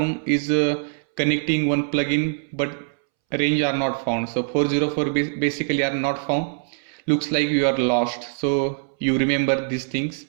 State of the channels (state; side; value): silent; left; 63 dB below the other